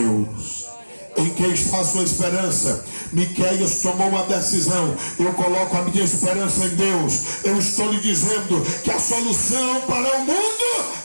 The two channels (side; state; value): both; inverted; correlation -1.00